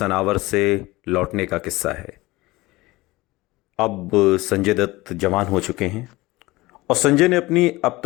से लौटने का किस्सा है। अब संजय दत्त जवान हो चुके हैं और संजय ने अपनी अब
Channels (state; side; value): quieter; right; 20.4 dB